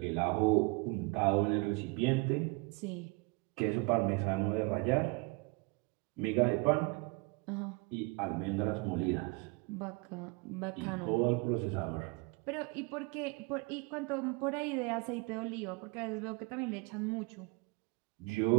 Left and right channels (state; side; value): quieter; left; 27.9 dB